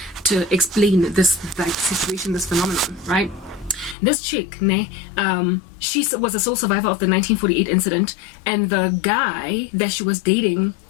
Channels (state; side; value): drops out; right; at 4.0 s